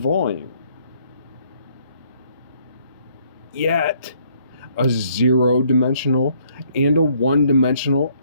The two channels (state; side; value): inverted; both; correlation -0.67